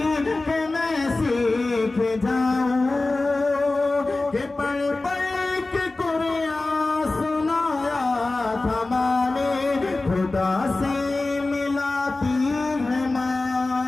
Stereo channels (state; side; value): quieter; right; 3.2 dB